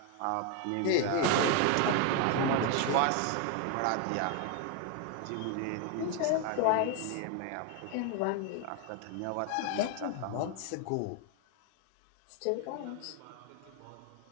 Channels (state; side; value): different; both; correlation 0.01